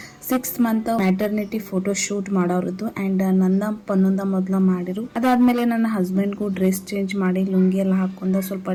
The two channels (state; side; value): identical; both; correlation 1.00